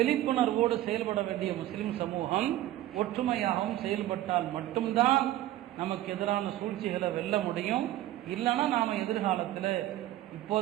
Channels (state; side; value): quieter; left; 14.3 dB